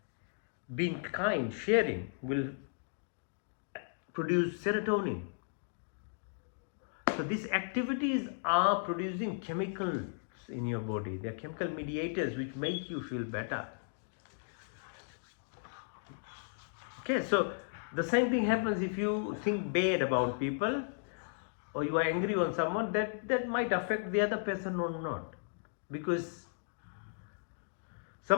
Being kind, sharing will produce serotonin. So these activities are producing chemicals in your body. They are chemical mediators which make you feel better. Okay, so the same thing happens if you think bad about people or you are angry on someone, that might affect the other person or not. Because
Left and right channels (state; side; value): silent; right; digital silence